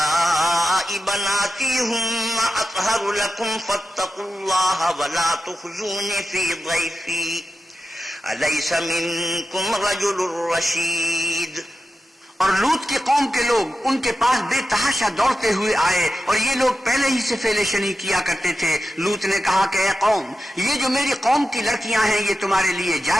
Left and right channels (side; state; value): both; normal; correlation 0.91